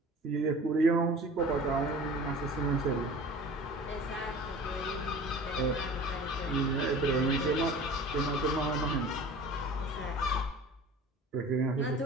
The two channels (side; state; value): both; normal; correlation 0.41